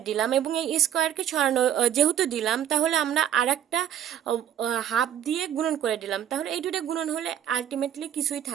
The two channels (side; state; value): left; quieter; 10.3 dB